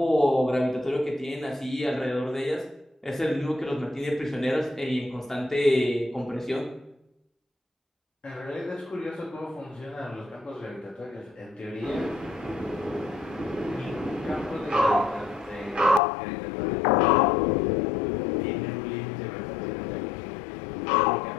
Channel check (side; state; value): right; drops out; at 16.0 s